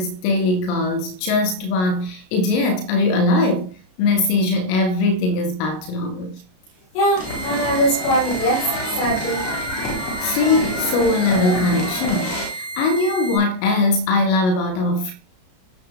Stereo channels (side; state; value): right; late; 33 ms